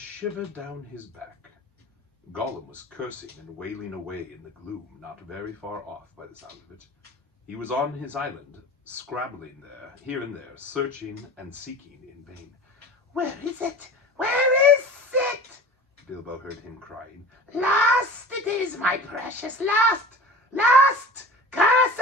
down his back. Gollum was cursing and wailing away in the gloom, not very far off by the sound of it. He was on his island, scrabbling there, here and there, searching and seeking in vain. "Where is it? Where is it?" Bilbo heard him crying. "Lost it is, my precious, lost! Lost! Curse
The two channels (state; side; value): normal; both; correlation 0.38